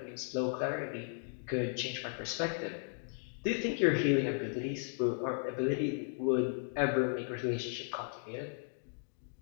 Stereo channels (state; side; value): silent; right; 54 dB below the other